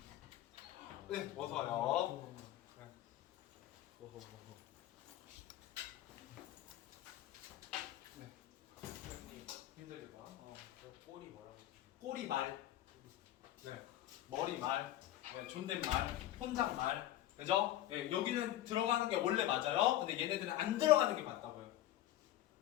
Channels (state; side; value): quieter; right; 13.7 dB